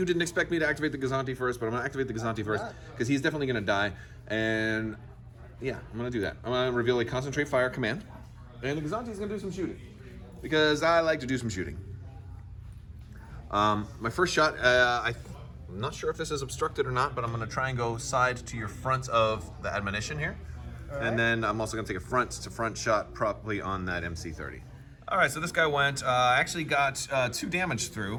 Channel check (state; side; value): identical; both; correlation 1.00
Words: didn't expect me to activate the Gazanti first, but I'm gonna activate the Gazanti first because he's definitely gonna die. And yeah, I'm gonna do that. I'm gonna reveal a concentrate fire command, and the Gazanti's gonna do some shooting because I like to do some shooting. My first shot, I'm not sure if this is obstructed or not, but I'm gonna try and go side to your front of the admonition here. And then I'm also gonna take a front to front shot probably on that MC-30. All right, so this guy went, actually got 2 damage